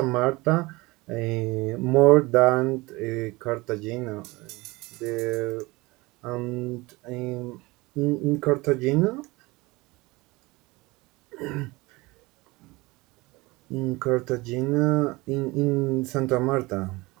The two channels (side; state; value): left; quieter; 22.6 dB